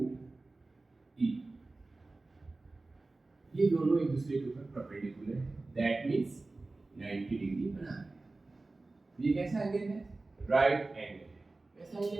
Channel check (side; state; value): left; quieter; 3.3 dB